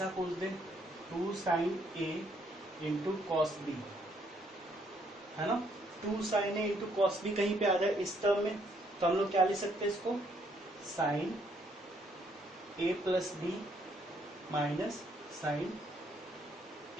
पूछ दें 2 साइन ए इंटू कॉस बी, है ना। 2 साइन ए इंटू कॉस बी कहीं पे आ जाए इस टर्म में, तो हम लोग क्या लिख सकते हैं इसको, sine A plus B minus sine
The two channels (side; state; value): both; normal; correlation 0.69